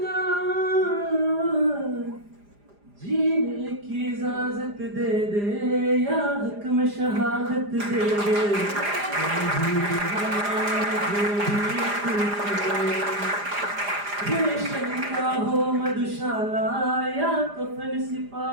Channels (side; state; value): left; late; 4.9 ms